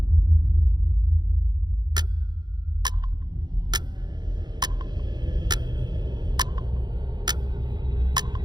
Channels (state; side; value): late; left; 0.21 ms